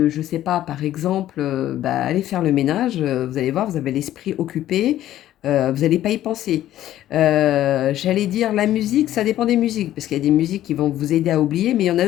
je sais pas, par exemple, bah, aller faire le ménage, vous allez voir, vous avez l'esprit occupé, vous n'allez pas y penser. J'allais dire la musique, ça dépend des musiques, parce qu'il y a des musiques qui vont vous aider à oublier, mais il y en a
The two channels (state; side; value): quieter; right; 13.1 dB